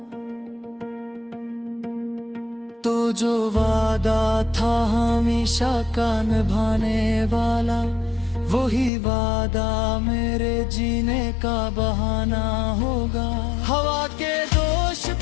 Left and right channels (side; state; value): right; drops out; at 8.9 s